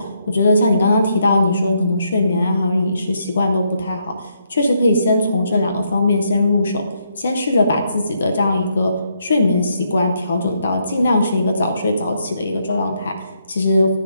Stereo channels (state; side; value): inverted; both; correlation -0.76